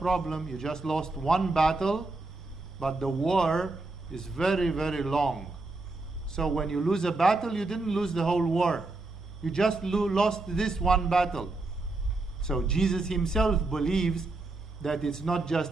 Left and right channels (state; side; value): quieter; left; 3.2 dB